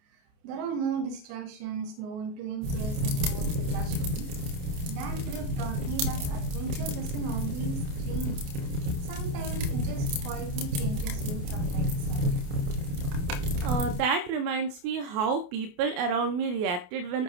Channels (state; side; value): late; left; 28 ms